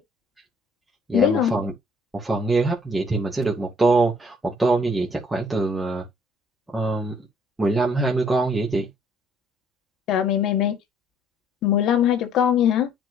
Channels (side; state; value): both; normal; correlation 0.61